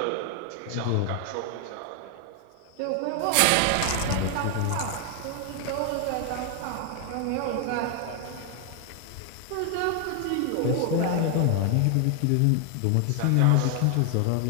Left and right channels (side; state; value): both; different; correlation 0.00